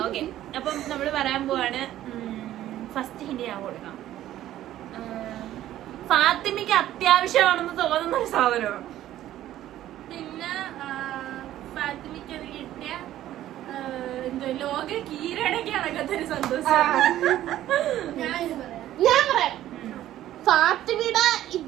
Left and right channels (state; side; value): quieter; left; 13.2 dB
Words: ഓക്കെ. അപ്പം നമ്മള് പറയാൻ പോവാണ്. ഫസ്റ്റ് ഹിന്ദി ഞാൻ കൊടുക്കാം. ഫാത്തിമയ്ക്ക് അത്യാവശ്യമാണെന്ന് തോന്നുന്ന ഒരു സാധനമാണ്. പിന്നെ ഫാത്തിമയ്ക്ക് അത് കിട്ടിയ എന്തോ ലോക കീഴടക്കി നടക്കത്തൊരു സന്തോഷം. ഞാൻ പറയാം, ഫാത്തിമയുടെ